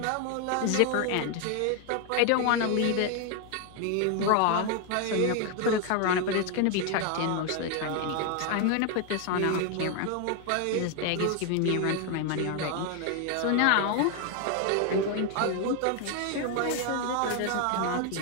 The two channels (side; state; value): both; different; correlation 0.01